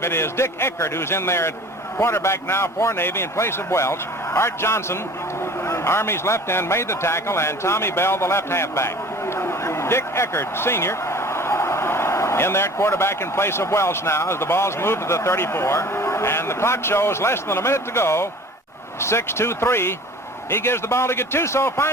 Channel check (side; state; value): both; normal; correlation 0.44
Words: It is Dick Eckert who's in there at quarterback now for Navy in place of Welsh. Art Johnson, Army's left end, made the tackle, and Tommy Bell, the left halfback. Dick Eckert, senior, in there at quarterback in place of Welsh now as the ball's moved to the 34. And the clock shows less than a minute to go. 6-2-3. He gives the ball to Gattuso,